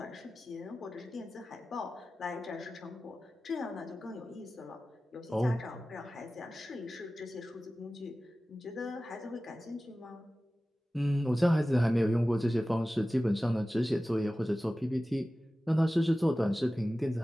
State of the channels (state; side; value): normal; both; correlation 0.96